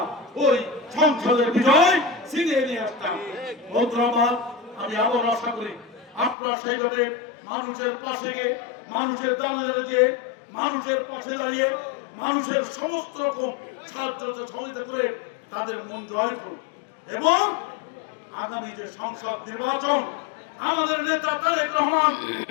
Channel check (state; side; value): drops out; right; at 6.4 s